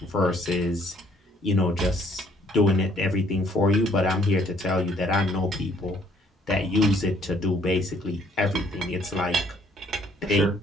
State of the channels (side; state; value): both; normal; correlation 0.63